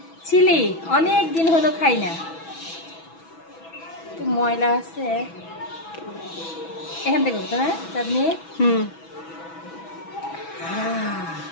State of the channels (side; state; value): right; late; 6.1 ms